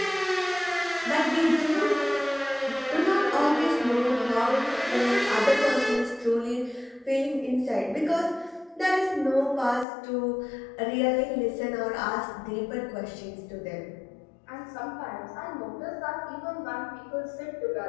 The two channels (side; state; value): right; drops out; at 9.9 s